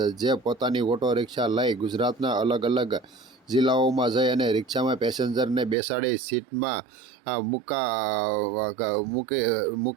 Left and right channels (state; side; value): drops out; left; at 5.8 s